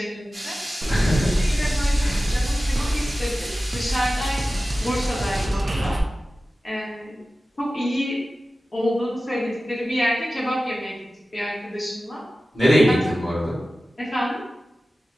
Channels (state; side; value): normal; both; correlation 0.95